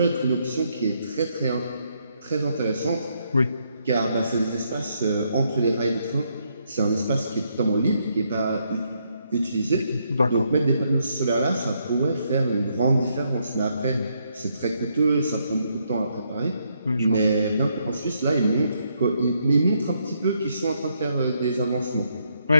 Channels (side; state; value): both; inverted; correlation -0.75